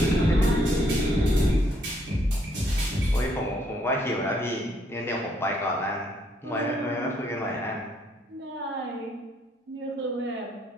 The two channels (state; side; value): normal; both; correlation 0.70